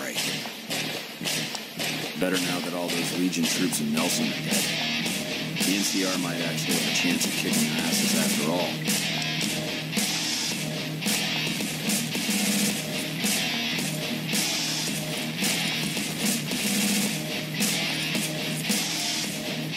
Better now that all those Legion troops in Nelson are dead. The NCR might actually have a chance of kicking their asses after all.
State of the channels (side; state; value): both; identical; correlation 1.00